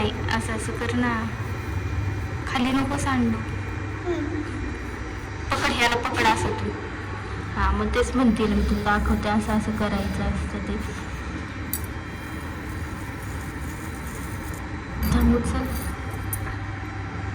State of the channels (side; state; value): both; identical; correlation 1.00